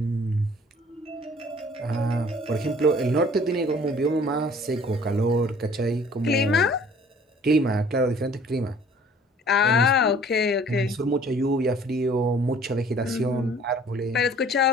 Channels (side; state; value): both; normal; correlation 0.53